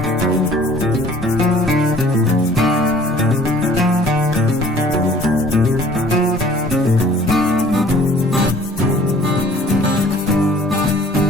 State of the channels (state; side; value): normal; both; correlation 0.53